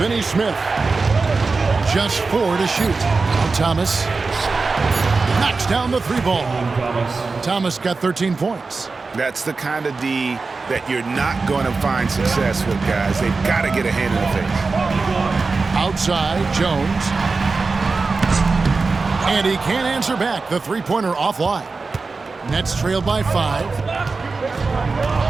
Just 4 to shoot. Now Thomas knocks down the 3-ball. Thomas got 13 points. That's the kind of D that you're not going to find success with, guys. They've got to get a hand in the face. Outside, Jones. And he can't answer back. The 3-pointer offline. Nets trail by 5.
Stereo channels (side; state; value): left; quieter; 4.1 dB